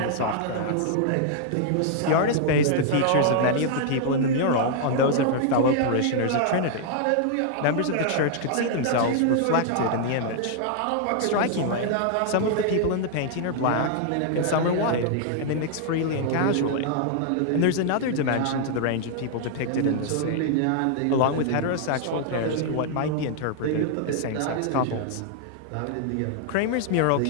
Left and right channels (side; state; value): both; different; correlation -0.01